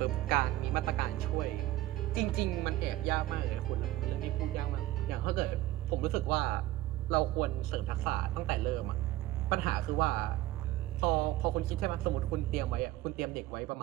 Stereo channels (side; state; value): left; quieter; 15.8 dB